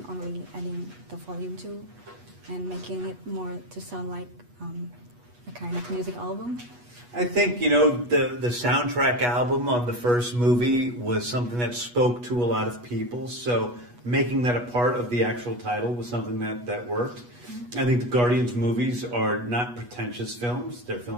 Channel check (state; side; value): late; left; 8.3 ms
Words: only adding the Volume 2 and making it more to sound like a kind of music album? I think, the soundtrack album on the first movie was something that spoke to a lot of people, so making that a part of the actual title was something that worked. I think the Guardians movies are not pretentious films. They're